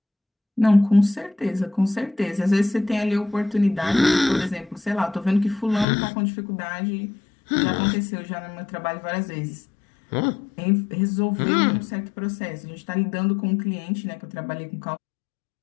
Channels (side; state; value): right; drops out; at 5.9 s